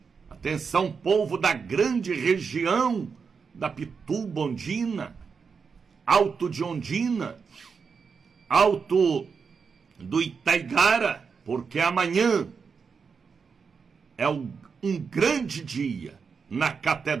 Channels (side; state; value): left; quieter; 5.6 dB